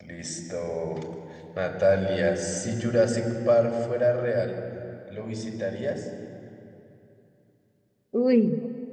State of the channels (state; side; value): identical; both; correlation 1.00